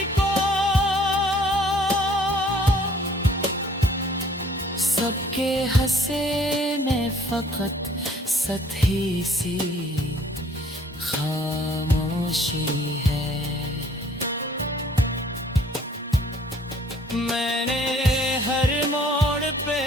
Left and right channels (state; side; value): normal; both; correlation 0.57